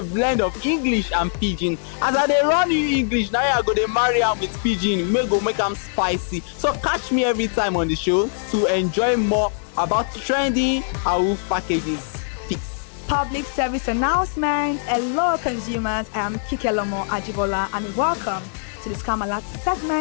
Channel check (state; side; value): silent; right; digital silence